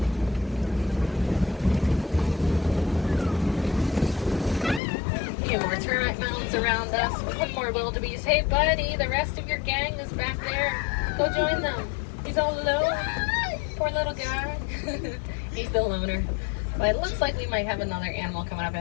Few more termite mounds around us. One more wildebeest. Hey buddy, the rest of your gang is back there. Go join them. He's all alone. Poor little guy. He's the loner. But it looks like we might have another animal coming up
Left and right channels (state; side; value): drops out; right; at 4.8 s